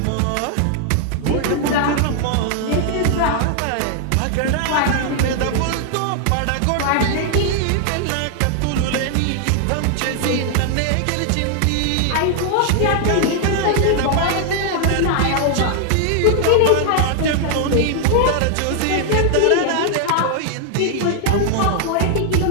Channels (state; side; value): different; both; correlation 0.00